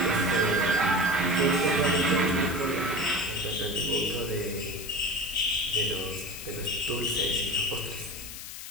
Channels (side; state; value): left; noise; hiss, 10 dB below the sound